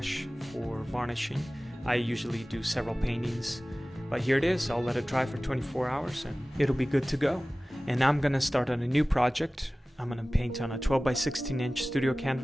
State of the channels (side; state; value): both; normal; correlation 0.97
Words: for varnishing. I usually do several paintings, but here it is. I'll let it dry for 24 hours and it'll be good to go. And I'm gonna start on a new project. I'm gonna paint on a 12 by 16 inch studio